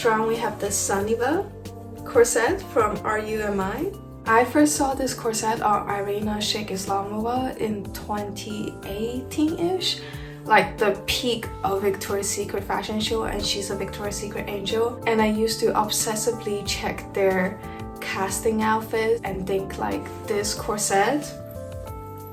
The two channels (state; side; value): identical; both; correlation 1.00